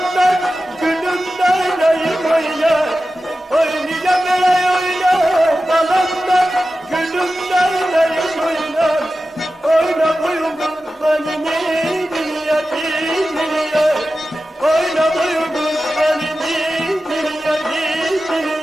gülümden ayım oynar Oynayacağım bile oynar Kalanlar gülümden ayım oynar Oyna boyun kurbanı niye niye Oyna boyun kurbanı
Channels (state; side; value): normal; both; correlation 0.94